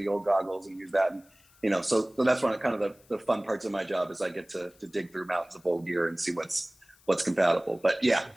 old goggles and use that. And, so that's one of kind of the fun parts of my job is I get to dig through mountains of old gear and see what's compatible. But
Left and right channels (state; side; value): noise; left; hiss, 29 dB below the sound